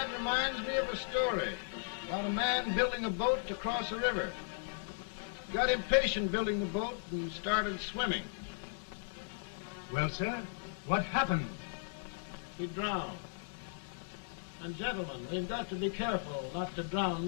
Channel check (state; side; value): silent; right; digital silence